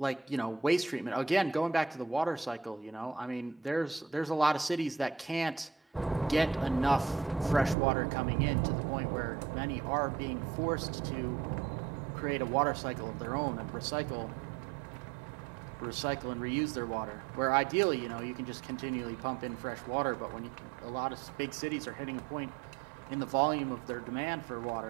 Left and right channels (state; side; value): drops out; left; at 7.8 s